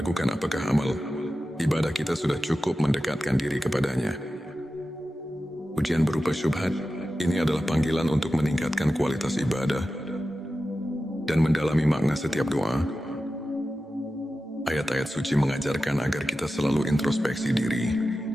apakah amal ibadah kita sudah cukup mendekatkan diri kepadanya. Ujian berupa syubhat ini adalah panggilan untuk meningkatkan kualitas ibadah dan mendalami makna setiap doa. Ayat-ayat suci mengajarkan agar kita selalu introspeksi diri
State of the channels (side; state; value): both; normal; correlation 0.93